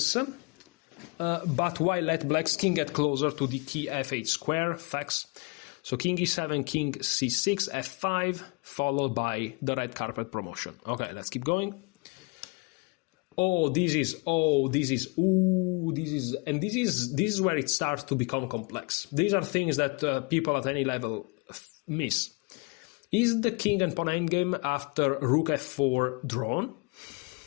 but why let black's king get closer to the key f8 square, facts. So king e7, king c6, f5, followed by the red carpet promotion. Okay, let's keep going. This is where it starts to become complex. These are things that people at any level miss. Is the king and pawn endgame after rook f4 drawn?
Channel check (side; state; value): right; quieter; 30.1 dB